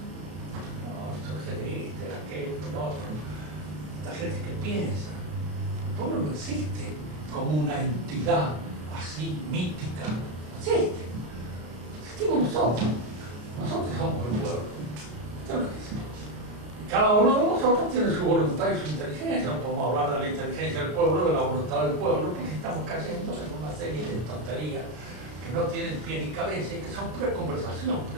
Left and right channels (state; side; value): late; left; 33 ms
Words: no surge de este, de aquel, del otro. Esta gente que piensa. El pueblo no existe como una entidad así mítica. No existe. Existimos nosotros. Nosotros somos el pueblo. Esto es lo que es. Cada uno de nosotros tiene su voluntad y su inteligencia. No podemos hablar de la inteligencia del pueblo, de la voluntad del pueblo, porque estamos cayendo en una serie de tonterías que no tienen pie ni cabeza y que son pura conversación,